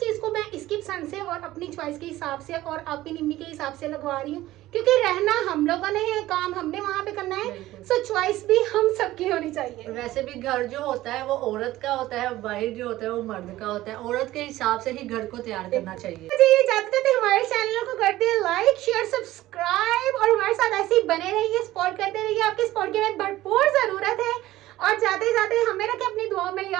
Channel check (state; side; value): quieter; left; 16.0 dB